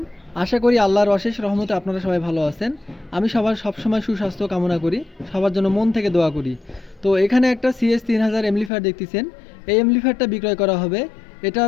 আশা করি আল্লাহর অশেষ রহমতে আপনারা সবাই ভালো আছেন। আমি সবার সবসময় সুস্বাস্থ্য কামনা করি, সবার জন্য মন থেকে দোয়া করি। তো এখানে একটা CS3000 এমপ্লিফায়ার দেখতেছেন। এই এমপ্লিফায়ারটা বিক্রয় করা হবে।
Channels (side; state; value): right; drops out; at 8.7 s